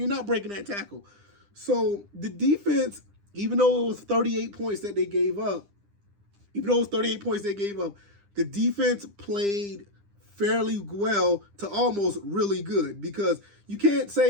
that tackle. So the defense, even though it was 38 points that they gave up, the defense played fairly well to almost really good, because you can't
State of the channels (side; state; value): left; late; 9.9 ms